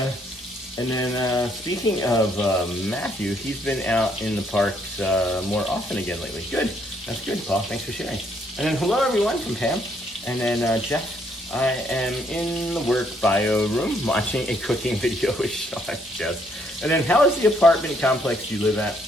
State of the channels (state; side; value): normal; both; correlation 0.70